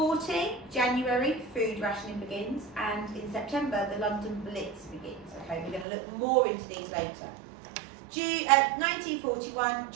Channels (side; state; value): left; drops out; at 5.9 s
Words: January, food rationing begins, and in September, the London Blitz begins. Okay, we're going to look more into these later. 1941,